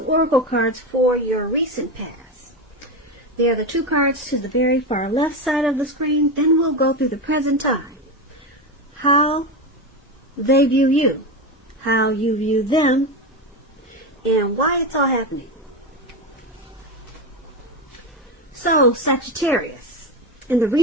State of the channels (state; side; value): normal; both; correlation 0.17